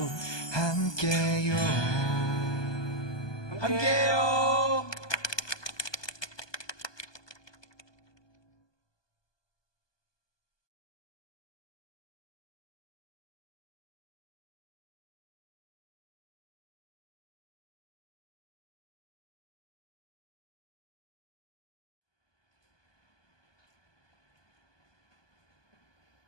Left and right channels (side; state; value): right; late; 1.2 ms